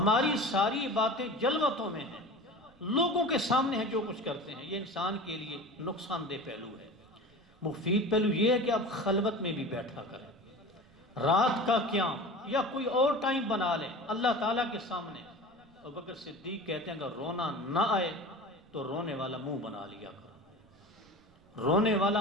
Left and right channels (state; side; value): noise; right; rumble, 29 dB below the sound